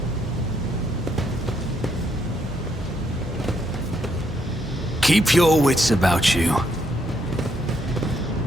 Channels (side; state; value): both; normal; correlation 0.74